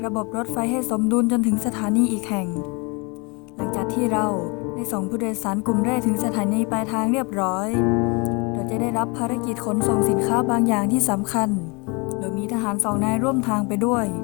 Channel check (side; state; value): right; quieter; 29.8 dB